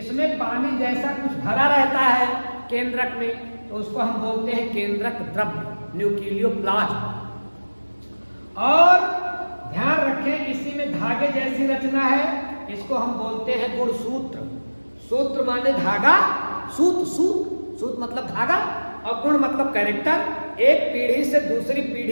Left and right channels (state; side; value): inverted; both; correlation -1.00